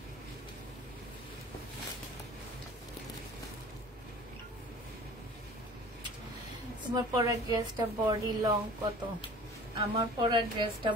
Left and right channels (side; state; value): both; normal; correlation 0.44